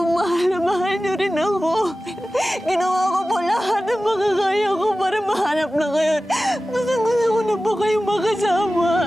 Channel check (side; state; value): both; normal; correlation 0.96